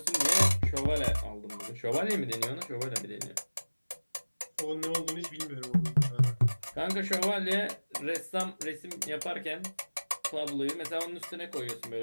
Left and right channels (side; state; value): both; inverted; correlation -1.00